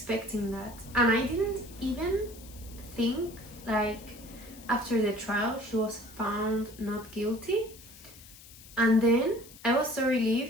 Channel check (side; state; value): left; noise; hiss, 19 dB below the sound